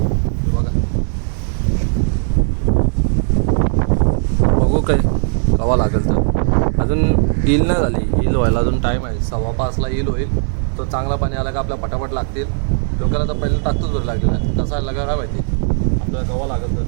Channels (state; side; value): silent; left; 58 dB below the other